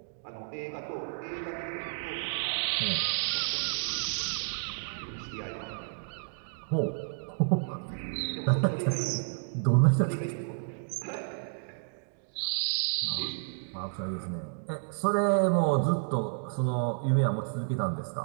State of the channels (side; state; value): left; silent; digital silence